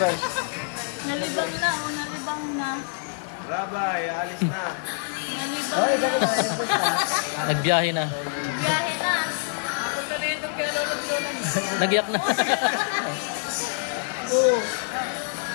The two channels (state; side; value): silent; right; digital silence